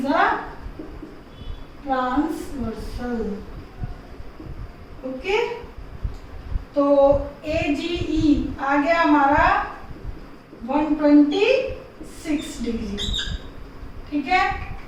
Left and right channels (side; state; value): both; identical; correlation 1.00